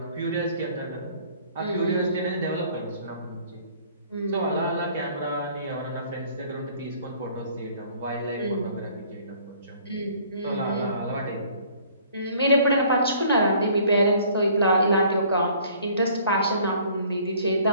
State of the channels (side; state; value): both; inverted; correlation -0.56